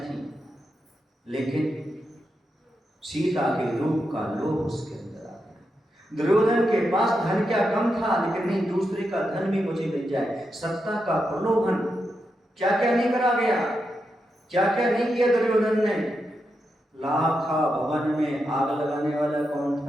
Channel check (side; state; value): both; normal; correlation 0.86